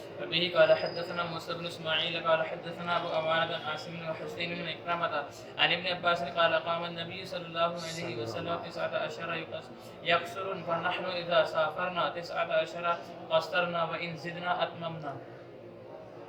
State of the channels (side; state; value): both; identical; correlation 1.00